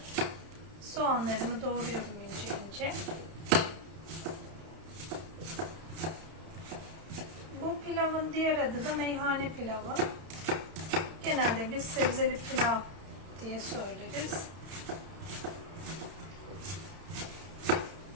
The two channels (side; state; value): left; late; 32 ms